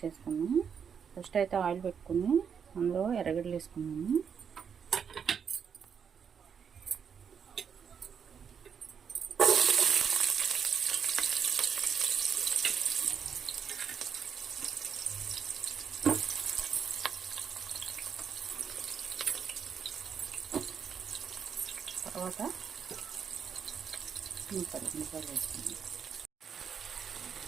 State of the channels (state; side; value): quieter; left; 7.1 dB